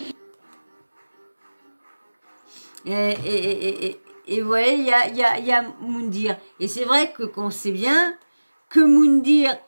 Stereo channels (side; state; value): both; inverted; correlation -1.00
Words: Et voilà, il y a Moundir. Et c'est vrai que qu'on sait bien que Moundir